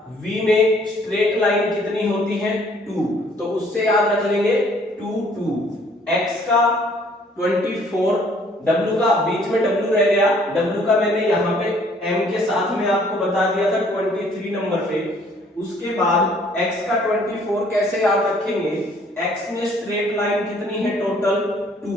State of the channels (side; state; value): both; normal; correlation 0.60